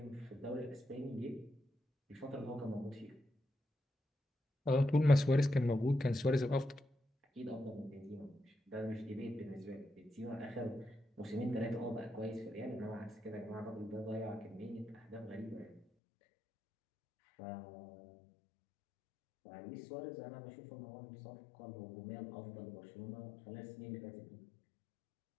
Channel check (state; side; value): drops out; right; at 15.8 s